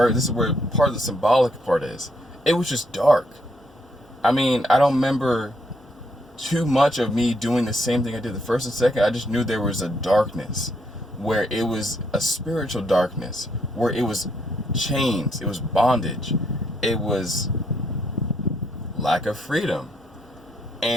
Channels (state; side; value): normal; both; correlation 0.74